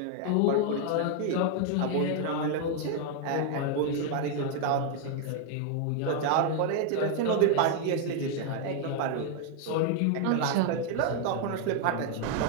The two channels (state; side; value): different; both; correlation 0.00